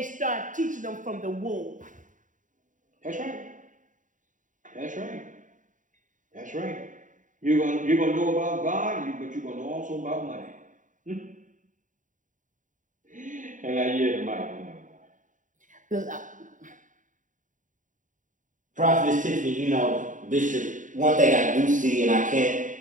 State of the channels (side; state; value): left; late; 0.37 ms